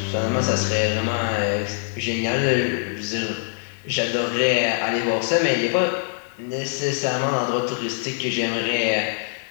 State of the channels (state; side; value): silent; right; 63 dB below the other